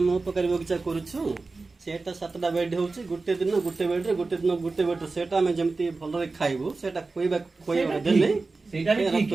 mo pakari bogcha koruchu सेटा 7टा बेड होउची गुटे दिन गुटे बेड रे गुटे दिन गुटे बेड सेटा हम जेमती भलो रे खाइबो सेटा खोइबा देले सेटा भी ठीक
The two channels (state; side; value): quieter; left; 3.8 dB